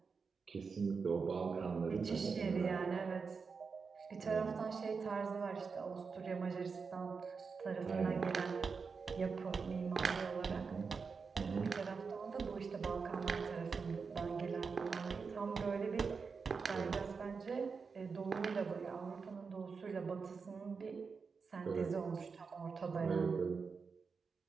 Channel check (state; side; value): quieter; left; 5.2 dB